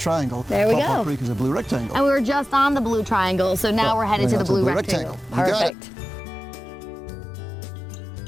There we go. Paw Paw Creek is a blue rectangle. And we were just on the blue triangle, so now we're headed to the blue rectangle. Perfect.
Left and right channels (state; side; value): drops out; right; at 5.7 s